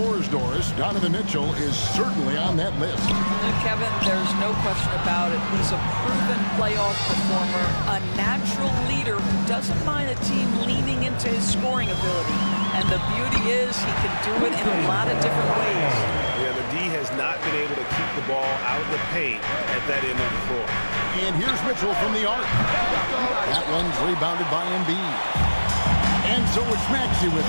Doris, Donovan Mitchell is certainly on that list. Kevin, there's no question about it. He's a proven playoff performer, a natural leader who doesn't mind a team leaning into his scoring ability. And the beauty is he can do it in a lot of different ways. Yeah, the D has not been able to keep the ball out of the paint at that end of the floor. And here's Mitchell from the arc. That one's rebounded by Embiid. And so it's Maxey with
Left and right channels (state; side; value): inverted; both; correlation -1.00